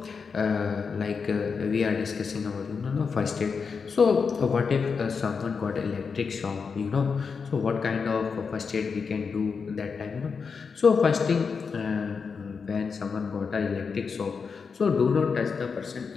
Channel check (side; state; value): right; quieter; 5.5 dB